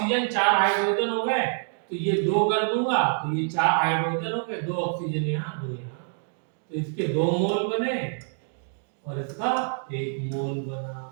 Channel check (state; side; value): silent; left; digital silence